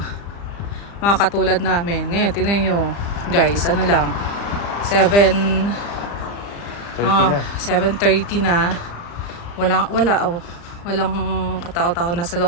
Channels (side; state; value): right; late; 35 ms